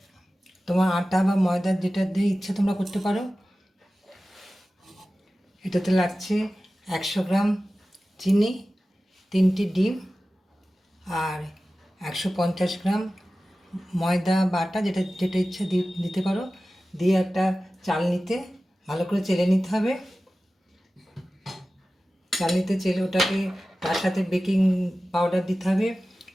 তোমার আটা বা ময়দা যেটা দিয়ে ইচ্ছা তোমরা করতে পারো। এটাতে লাগছে 100 গ্রাম চিনি, 3টি ডিম আর 150 গ্রাম ময়দা বা আটা যেটা যেটা ইচ্ছা দিতে পারো। দিয়ে একটা চালনিতে ভালো করে চেলে নিতে হবে। চালনিতে চেলে ওটাকে তার সাথে বেকিং পাউডার দিতে হবে,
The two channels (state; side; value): normal; both; correlation 0.96